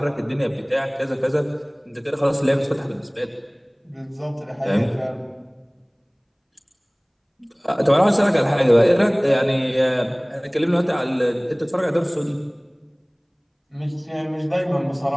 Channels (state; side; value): identical; both; correlation 1.00